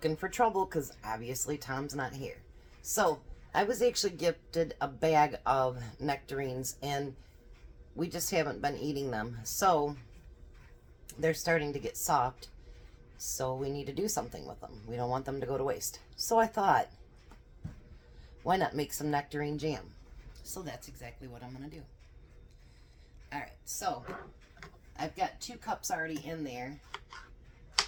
for trouble because obviously Tom's not here. So I was actually gifted a bag of nectarines and we just haven't been eating them. So they're starting to get soft. So we need to do something with them. We don't want them to go to waste. So I thought, why not make some nectarine jam? So that's exactly what I'm going to do. Alright, so I've got 2 cups already in there.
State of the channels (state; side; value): identical; both; correlation 1.00